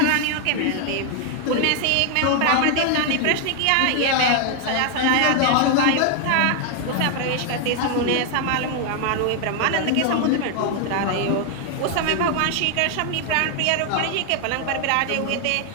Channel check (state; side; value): different; both; correlation 0.00